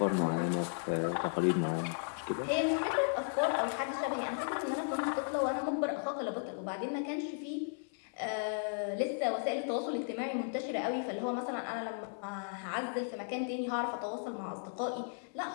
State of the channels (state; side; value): silent; right; 54 dB below the other